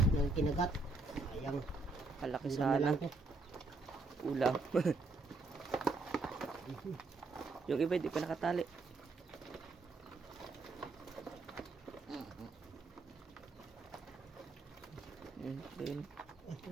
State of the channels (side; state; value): left; quieter; 3.5 dB